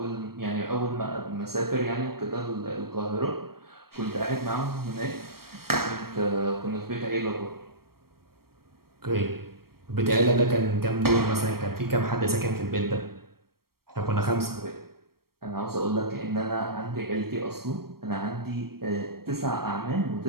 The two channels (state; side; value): late; left; 0.94 ms